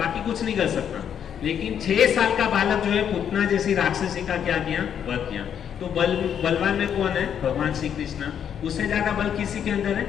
कुछ नहीं कर सकता। लेकिन 6 साल का बालक जो है पूतना जैसी राक्षसी का क्या किया, वध किया। तो बलवान में कौन है, भगवान श्री कृष्ण। उससे ज्यादा बल किसी के अंदर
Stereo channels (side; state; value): right; quieter; 8.6 dB